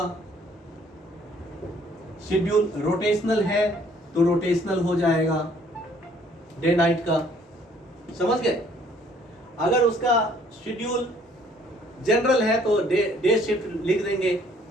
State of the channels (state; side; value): normal; both; correlation 0.61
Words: शेड्यूल रोटेशनल है तो रोटेशनल हो जाएगा, डे नाइट का। समझ गए? अगर उसका शेड्यूल जनरल है तो डे शिफ्ट लिख देंगे।